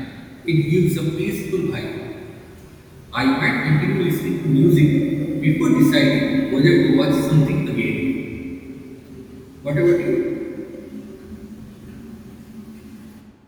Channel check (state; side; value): identical; both; correlation 1.00